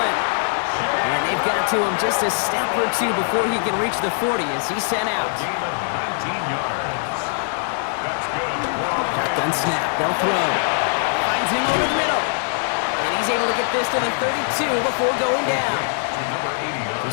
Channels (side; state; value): right; silent; 61 dB below the other